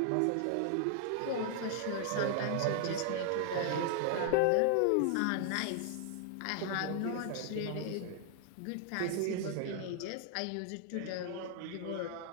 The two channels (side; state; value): both; different; correlation 0.00